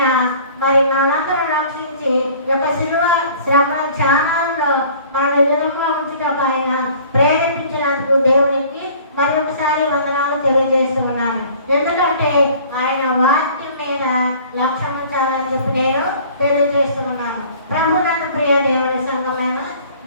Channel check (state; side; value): inverted; both; correlation -0.50